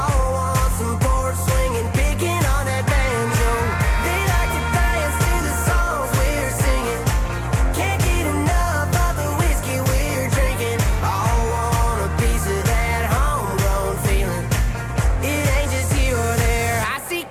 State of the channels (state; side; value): identical; both; correlation 1.00